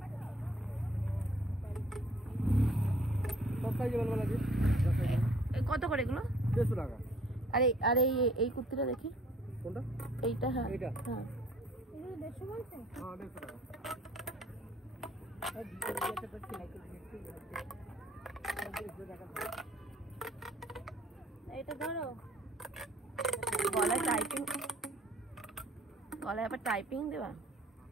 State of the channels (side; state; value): both; normal; correlation 0.57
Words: কত করে এগুলো? 150 টাকা। আরে আরে এই কুর্তিটা দেখি। কোনটা? এইটা। হ্যাঁ এইটা। হ্যাঁ, এগুলো 150 বলছেন? হ্যাঁ 150 টাকা। এইটা ধরো। গলায় টাইপিং, গলায় আবার টাইপিং দেবা।